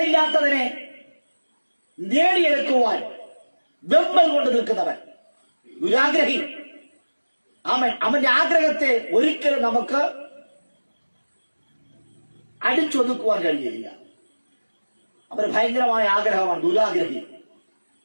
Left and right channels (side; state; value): both; inverted; correlation -1.00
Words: നേടിയെടുക്കുവാൻ വെമ്പൽ കൊണ്ട് നിൽക്കുന്നവൻ ദുരാഗ്രഹി. അവന്റെ ആഗ്രഹത്തെ ഒരിക്കലും നമുക്ക് അടിച്ചൊതുക്കുവാൻ കഴിയുകയില്ല. അവന് ഭയങ്കരമായ ആഗ്രഹമാണ് ദുരാഗ്രഹി.